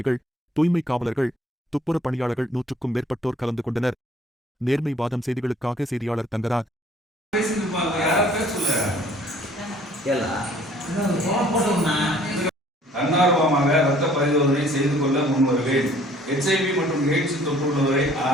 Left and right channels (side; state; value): both; normal; correlation 0.57